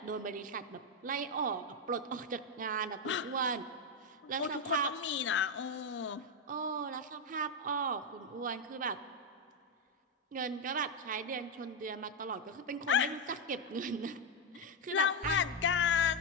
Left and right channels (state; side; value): normal; both; correlation 0.04